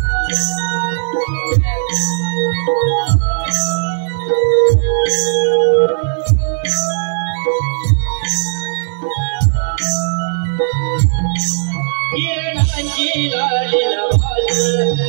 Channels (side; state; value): left; silent; digital silence